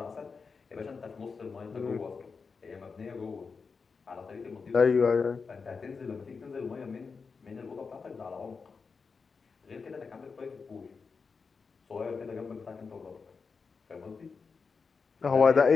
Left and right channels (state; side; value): quieter; right; 5.0 dB